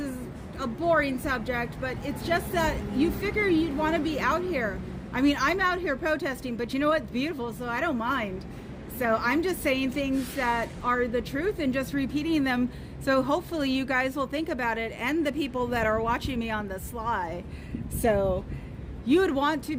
a boring subject, but it's just that you figure you'd want to be out here. I mean, I'm out here protesting, but you know what? It's beautiful, so I don't mind. So I'm just saying things that are the truth and just repeating them. So hopefully you guys will think about it, and the people that are watching me on the sly. So you would want to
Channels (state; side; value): identical; both; correlation 1.00